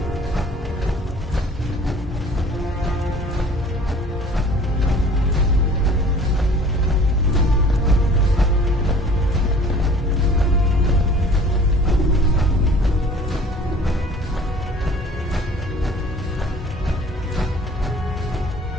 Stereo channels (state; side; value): normal; both; correlation 0.49